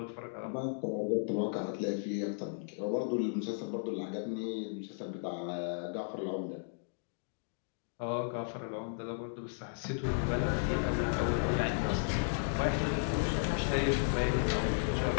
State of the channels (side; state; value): right; silent; digital silence